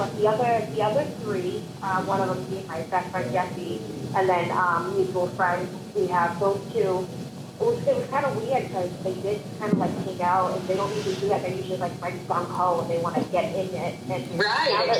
the other 3, one of them being my best friend Jesse, and then mutual friends. We have those 2. It was kind of weird because they did kind of like hang out, and they don't usually do that. They're usually like right gung ho, and they want to get in it. And right,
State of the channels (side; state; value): both; identical; correlation 1.00